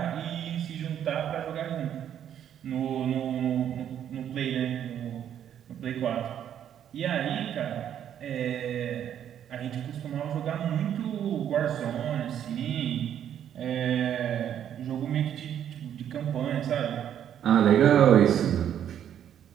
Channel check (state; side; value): quieter; left; 9.8 dB